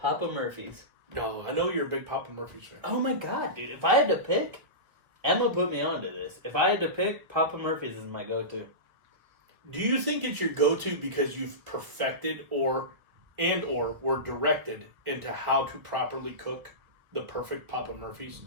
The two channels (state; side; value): late; left; 1.6 ms